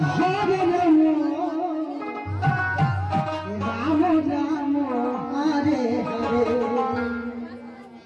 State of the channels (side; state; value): both; identical; correlation 1.00